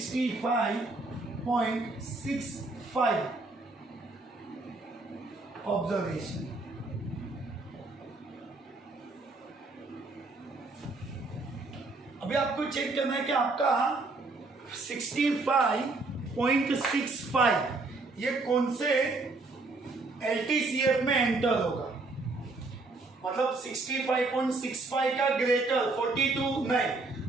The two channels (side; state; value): left; quieter; 3.4 dB